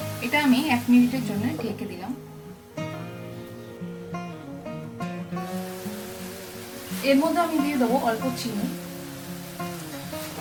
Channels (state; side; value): identical; both; correlation 1.00